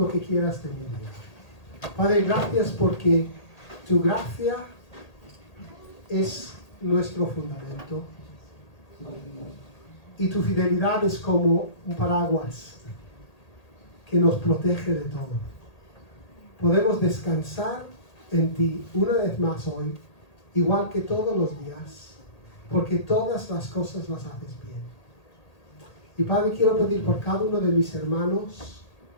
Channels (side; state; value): right; late; 1.8 ms